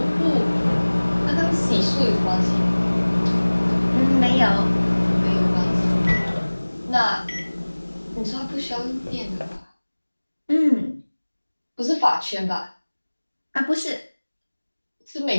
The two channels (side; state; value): both; inverted; correlation -1.00